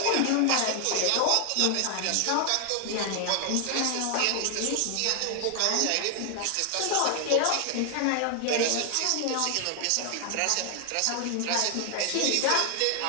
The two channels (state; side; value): different; both; correlation 0.00